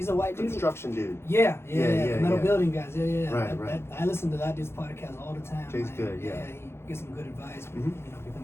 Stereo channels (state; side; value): late; right; 0.12 ms